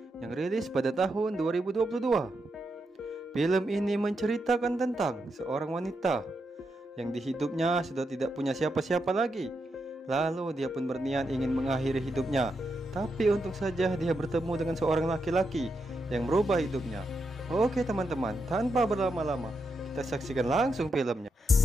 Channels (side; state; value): both; normal; correlation 0.84